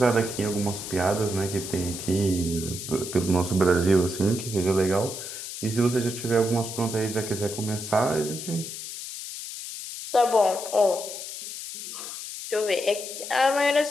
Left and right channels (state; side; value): noise; left; hiss, 8 dB below the sound